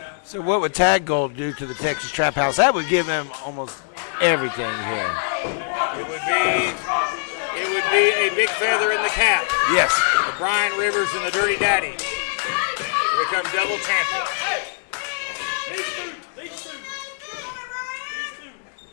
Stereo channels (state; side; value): silent; right; 64 dB below the other